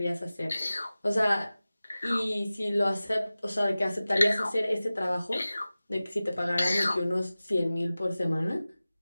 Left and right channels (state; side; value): inverted; both; correlation -0.97